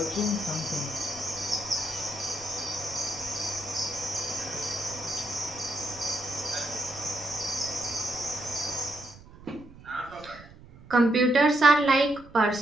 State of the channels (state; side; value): noise; right; rumble, 20 dB below the sound